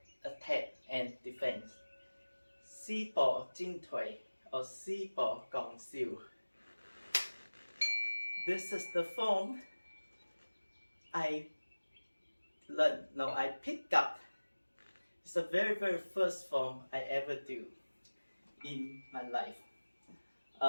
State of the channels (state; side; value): inverted; both; correlation -1.00